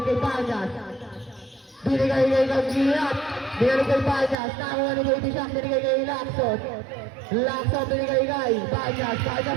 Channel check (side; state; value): left; drops out; at 4.4 s